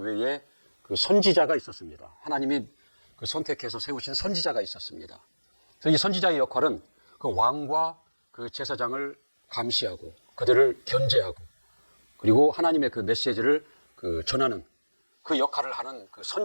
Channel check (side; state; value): both; inverted; correlation -1.00